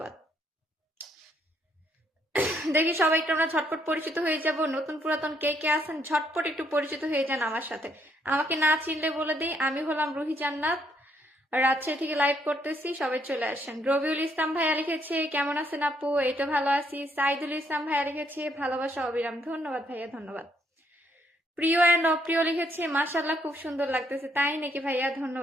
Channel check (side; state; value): both; normal; correlation 0.71